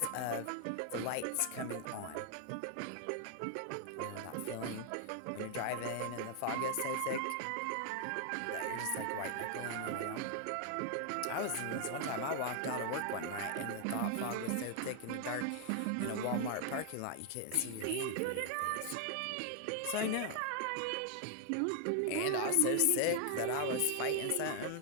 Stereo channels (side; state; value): both; different; correlation 0.00